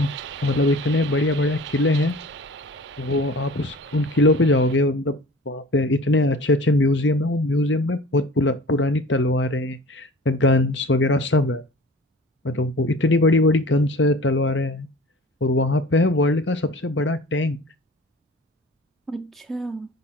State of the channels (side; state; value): both; normal; correlation 0.42